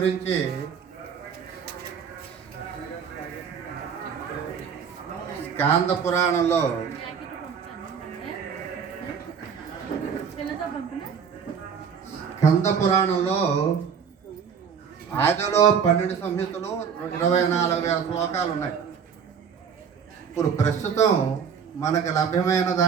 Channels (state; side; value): quieter; left; 6.9 dB